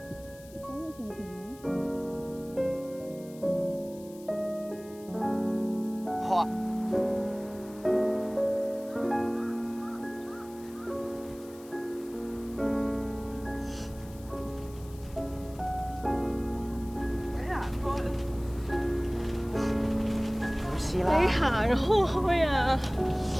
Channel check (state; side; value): noise; left; hiss, 22 dB below the sound